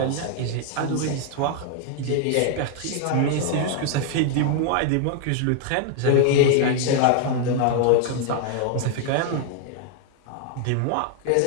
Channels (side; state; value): both; different; correlation 0.00